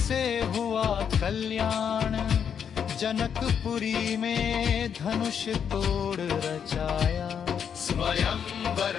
हुआ कल्याण। जनकपुरी में धनुष तोड़ रचाया स्वयंवर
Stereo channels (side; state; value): right; quieter; 7.7 dB